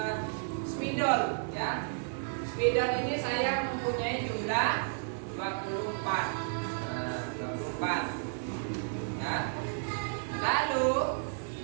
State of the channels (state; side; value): silent; left; 56 dB below the other